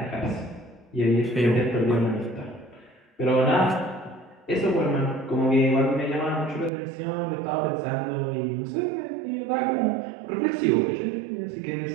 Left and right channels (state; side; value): drops out; left; at 6.7 s